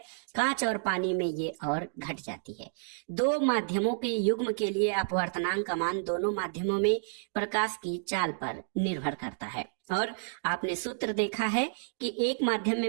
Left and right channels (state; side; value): silent; left; digital silence